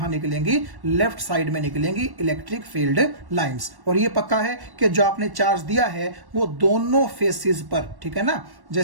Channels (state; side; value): late; left; 1.1 ms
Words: निकलेंगी? लेफ्ट साइड में निकलेंगी इलेक्ट्रिक फील्ड लाइंस। और ये पक्का है कि जो आपने चार्ज दिया है वो दोनों फेसेस पर, ठीक है ना,